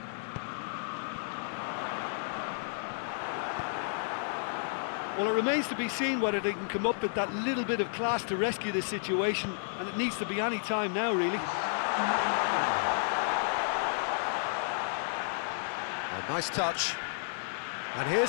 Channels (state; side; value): silent; right; digital silence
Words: Well, it remains to be seen whether they can come up with that little bit of class to rescue this situation, and it needs to be any time now, really. A nice touch. And